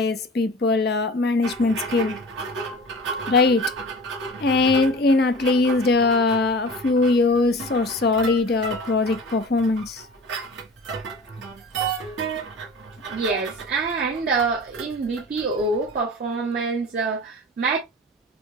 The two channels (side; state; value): both; normal; correlation 0.38